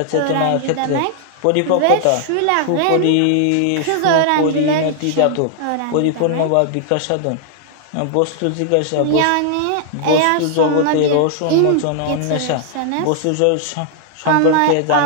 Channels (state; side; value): different; both; correlation 0.00